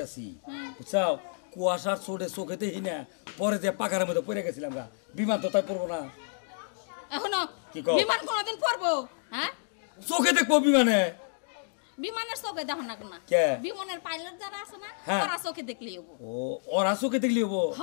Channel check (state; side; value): silent; right; digital silence